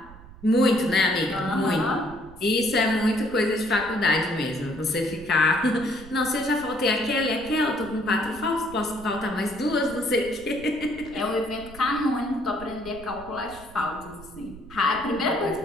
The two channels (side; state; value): right; noise; rumble, 18 dB below the sound